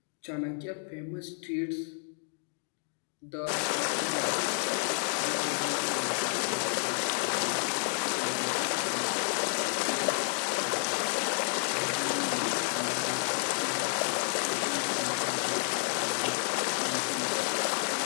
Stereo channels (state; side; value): silent; right; 57 dB below the other